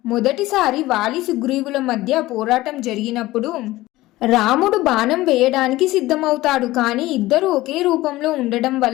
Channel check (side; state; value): right; quieter; 17.7 dB